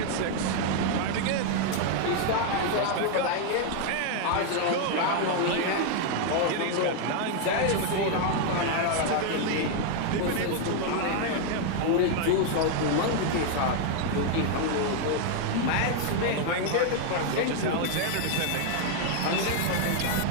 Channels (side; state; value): both; different; correlation 0.01